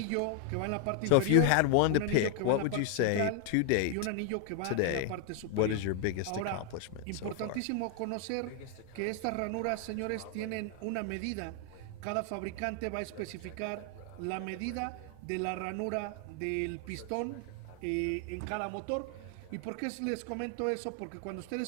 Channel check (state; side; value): different; both; correlation 0.00